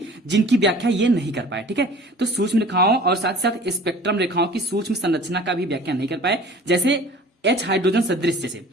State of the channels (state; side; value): normal; both; correlation 0.45